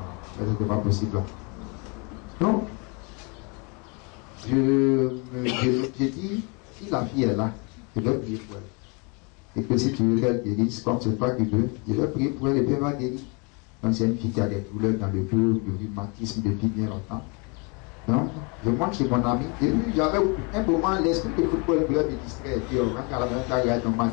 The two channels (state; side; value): quieter; right; 32.2 dB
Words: Ça, c'était pas possible. Donc, j'ai dit, si la fille est là, je vais prier pour elle. Et que si tu veux qu'elle guérisse, comme c'est toi qui veux, je vais prier pour elle et puis elle va guérir. Donc c'est une fille qui a des douleurs dans le dos, du rhumatisme depuis bien longtemps. Donc, je monte chez mon ami. Et puis j'avais un moment, l'esprit de football me distrait. Et puis on rentre à la même temps, regarde un